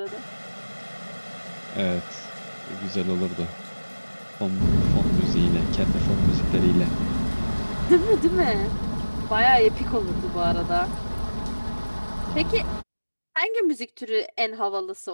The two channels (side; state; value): both; inverted; correlation -1.00